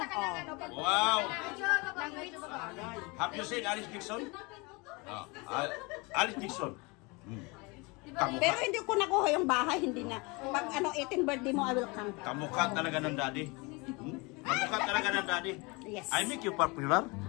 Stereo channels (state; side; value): quieter; right; 27.2 dB